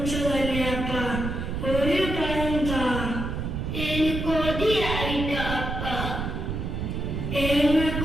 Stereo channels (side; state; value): right; noise; rumble, 3 dB below the sound